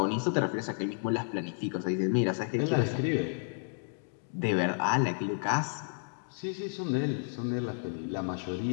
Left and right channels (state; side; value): silent; right; digital silence